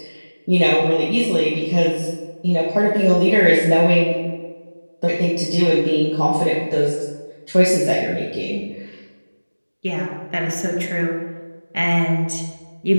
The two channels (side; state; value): both; inverted; correlation -1.00